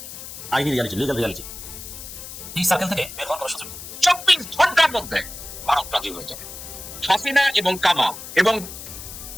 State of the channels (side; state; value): left; noise; hiss, 11 dB below the sound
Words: আইনি রিয়ালিটি, লিগাল রিয়ালিটি। এই সার্কেল থেকে বের হওয়ার কোনো সুযোগ নেই। 24 ঘন্টার মধ্যে ভারত রাজি হয়ে যাবে। হাসিনা এবং কামাল এবং